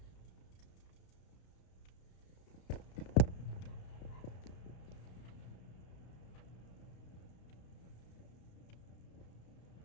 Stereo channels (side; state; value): right; late; 33 ms